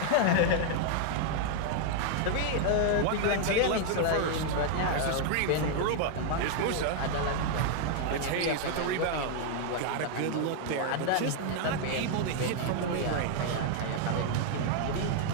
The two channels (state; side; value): different; both; correlation 0.00